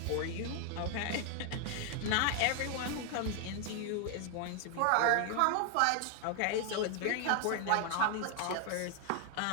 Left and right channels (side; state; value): both; different; correlation 0.00